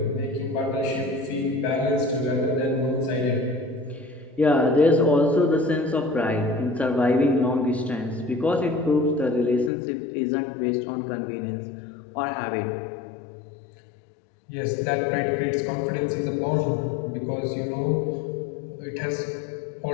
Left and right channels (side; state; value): right; drops out; at 9.7 s